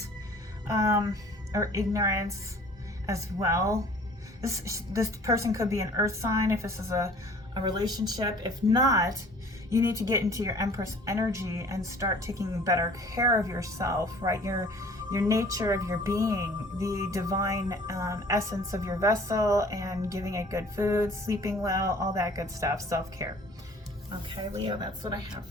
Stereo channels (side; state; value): both; normal; correlation 0.51